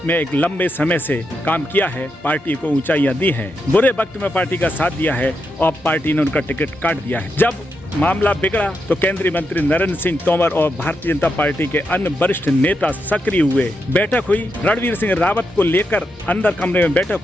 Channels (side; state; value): both; normal; correlation 0.84